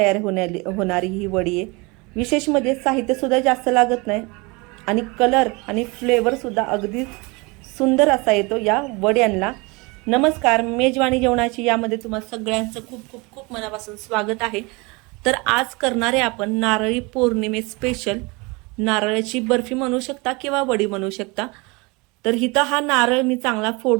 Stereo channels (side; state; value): left; quieter; 26.9 dB